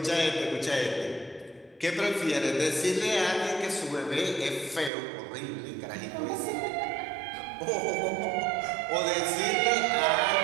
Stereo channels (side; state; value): left; drops out; at 4.9 s